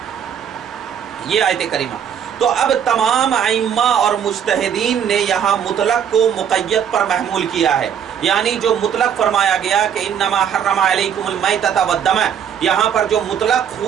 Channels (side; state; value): left; quieter; 8.4 dB